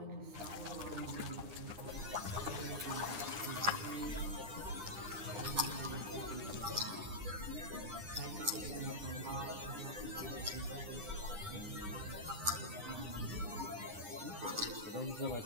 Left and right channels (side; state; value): left; late; 9.7 ms